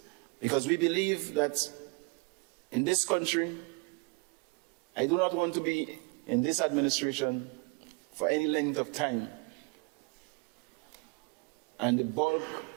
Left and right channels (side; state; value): left; quieter; 31.5 dB